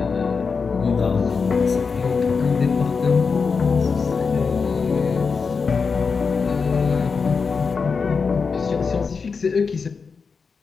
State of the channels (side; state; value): right; quieter; 5.2 dB